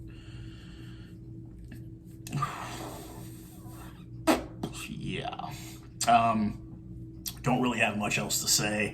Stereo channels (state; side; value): identical; both; correlation 1.00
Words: Yeah. Don't really have much else to